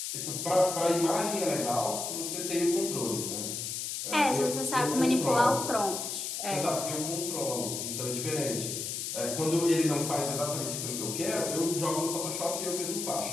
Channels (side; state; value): left; noise; hiss, 4 dB below the sound